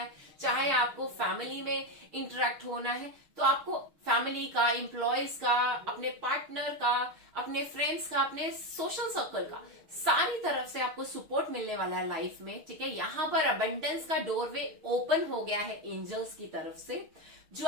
चाहे आपको फैमिली में इंटरेक्ट होना है, तो आपको फैमिली का, एम्प्लॉयज का, अपने पार्टनर का, अपने फ्रेंड्स का, अपने सोशल सर्कल का, सारी तरफ से आपको सपोर्ट मिलने वाला है लाइफ में, ठीक है। यहाँ पर अबंडेंस का डोरवे ओपन हो गया है एंजल्स की तरफ से, जो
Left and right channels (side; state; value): left; late; 6.5 ms